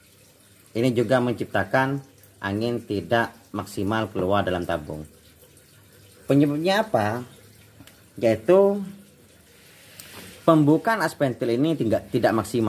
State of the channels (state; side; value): identical; both; correlation 1.00